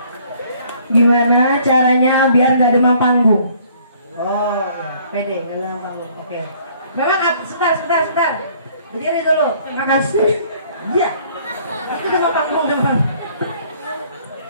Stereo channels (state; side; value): inverted; both; correlation -0.59